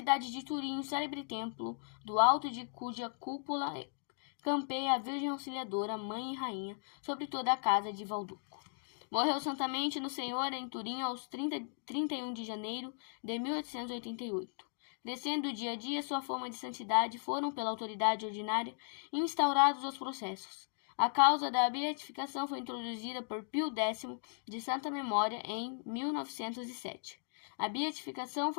de Turim, o célebre templo, do alto de cuja cúpula campeia a Virgem Auxiliadora, mãe e rainha, sobre toda a casa de Valduco. Morreu santamente no Senhor em Turim aos 31 de janeiro de 1888. Crescendo dia a dia sua fama de santidade, foram pela autoridade ordinária instaurados os processos. A causa da beatificação foi introduzida por Pio X, de santa memória, em 1907. A beatificação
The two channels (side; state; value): right; silent; digital silence